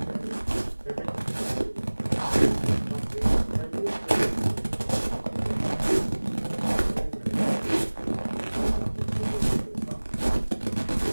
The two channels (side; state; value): both; inverted; correlation -1.00